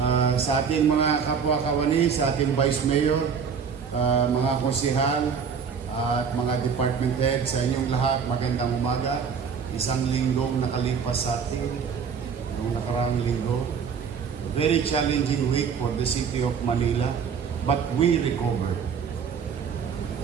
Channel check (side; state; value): left; quieter; 6.5 dB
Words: Sa ating mga kapwa-kawani, sa ating Vice Mayor, mga konsehal, at mga department head, sa inyong lahat, magandang umaga. Isang linggong nakalipas sa atin, noong nakaraang linggo. Very challenging week for the city of Manila, but we recovered.